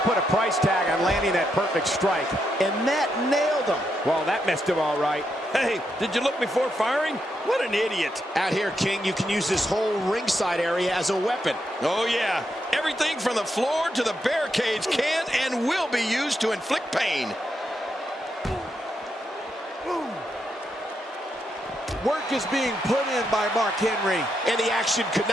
put a price tag on landing that perfect strike, and that nailed him. Well, that missed him all right. Hey, did you look before firing? What an idiot. Out here, King, you can use this whole ringside area as a weapon. Oh, yeah. Everything from the floor to the barricades can and will be used to inflict pain. Work is being put in by Mark Henry. And the action could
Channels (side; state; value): both; normal; correlation 0.82